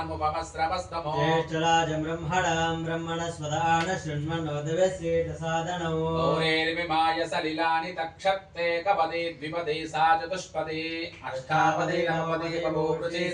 ज्येष्ठराजं ब्रह्मणां ब्रह्मणस्पदान शृण्वन्नोदवस्येतसादनौ गौरेर्विमाय सलिलानि तक्षत्ते कपदे द्विपदे सा चतुष्पदे अष्टापदे नवपदे बभूवृषि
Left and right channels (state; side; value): identical; both; correlation 1.00